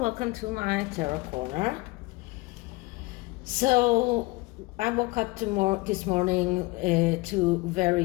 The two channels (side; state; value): right; quieter; 22.8 dB